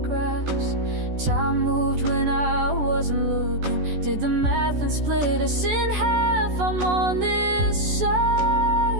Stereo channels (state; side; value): late; left; 14 ms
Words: Time moved when I wasn't looking, did the math and split us in half. I'm on this